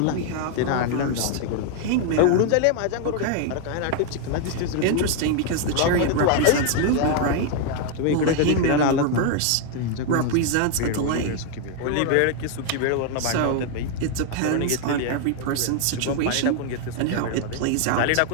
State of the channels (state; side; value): different; both; correlation 0.00